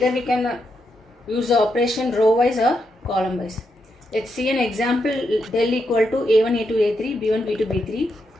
we can use the operation row wise or column wise. Let's see an example. Del equal to A1, A2, A3, B1, B2, B3,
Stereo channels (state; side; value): normal; both; correlation 0.82